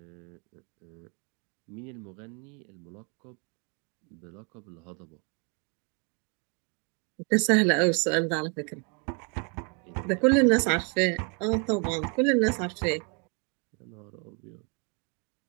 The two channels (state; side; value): quieter; left; 36.1 dB